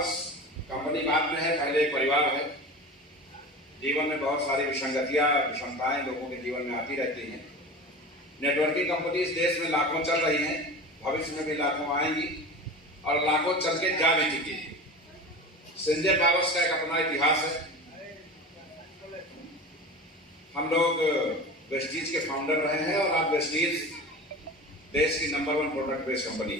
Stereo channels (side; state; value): both; normal; correlation 0.32